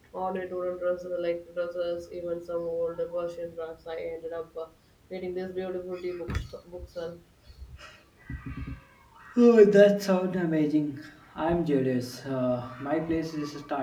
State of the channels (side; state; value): both; identical; correlation 1.00